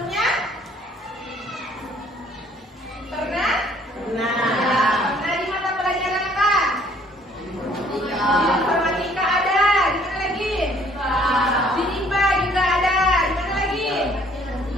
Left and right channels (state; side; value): normal; both; correlation 0.60